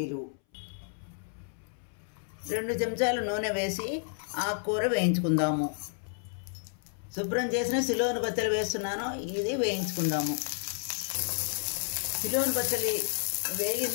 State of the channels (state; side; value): silent; right; 57 dB below the other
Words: 2 చెంచాలు నూనె వేసి ఆకుకూర వేయించుకుందాము. శుభ్రం చేసిన సిలోన్ బచ్చలి వేస్తున్నాను, ఇది వేయించుకుందాము. సిలోన్ బచ్చలి